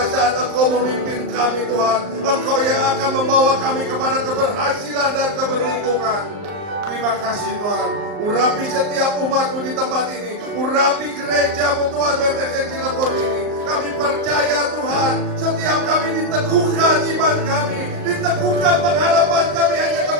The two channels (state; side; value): late; left; 39 ms